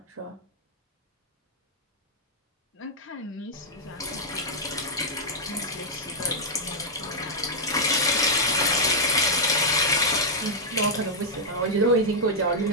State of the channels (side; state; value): both; normal; correlation -0.06